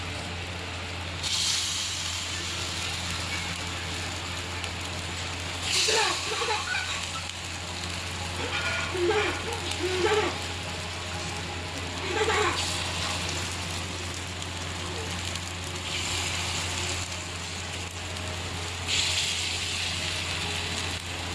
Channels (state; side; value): identical; both; correlation 1.00